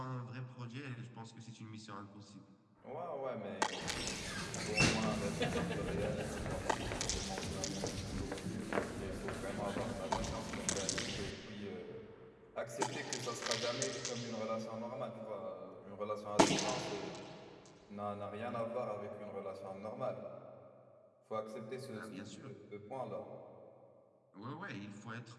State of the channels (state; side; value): identical; both; correlation 1.00